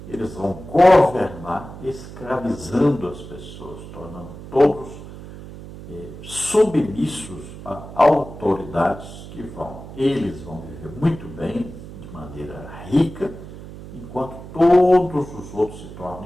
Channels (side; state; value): right; noise; hum, 14 dB below the sound